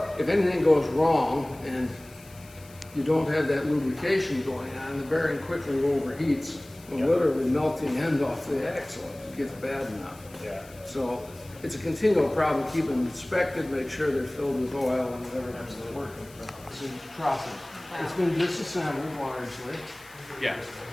if anything goes wrong and you don't have that lubrication going on, the bearing quickly overheats, and literally melting end off the axle if it gets bad enough. Yeah. So it's a continual problem. Keep them inspected, make sure they're filled with oil and whatever that's working. It's a process. It's been disassembled largely. Yeah.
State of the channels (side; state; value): left; noise; hiss, 23 dB below the sound